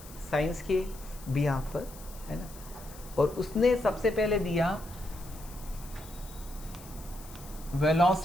साइंस के बिहाफ पर, है ना। और उसने सबसे पहले दिया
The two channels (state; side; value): noise; left; hiss, 18 dB below the sound